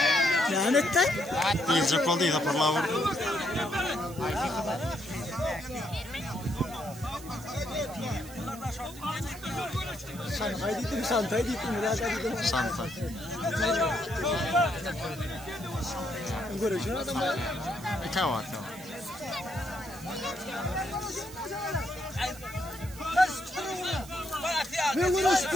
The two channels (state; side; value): noise; right; hiss, 17 dB below the sound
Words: Lanetten? Diyecek oldu ya parla vur. Santay dittim biraz dittim. Santa. Görüşün adam. Tamam. Ne